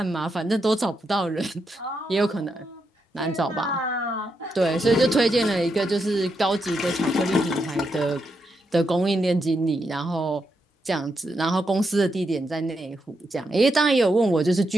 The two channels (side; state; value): both; normal; correlation 0.83